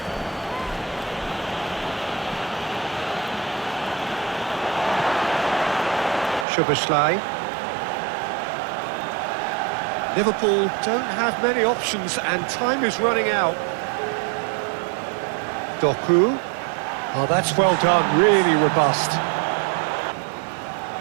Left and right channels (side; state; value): left; drops out; at 6.5 s